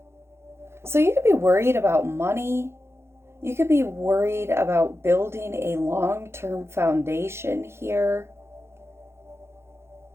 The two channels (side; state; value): left; late; 0.12 ms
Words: So you could be worried about money. You could be worried about building a long-term foundation here.